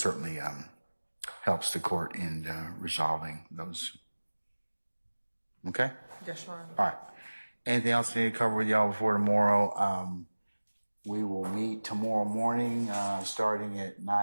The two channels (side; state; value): both; inverted; correlation -1.00